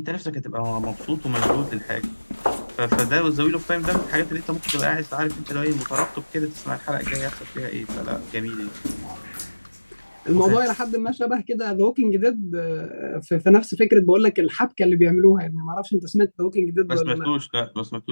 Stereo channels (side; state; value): both; inverted; correlation -1.00